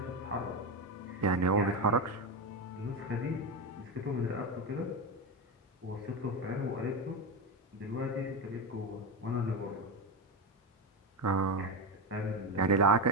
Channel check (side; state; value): both; normal; correlation 0.13